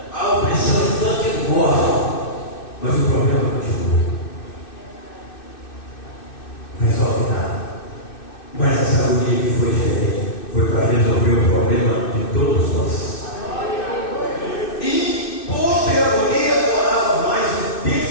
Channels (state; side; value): late; right; 2.6 ms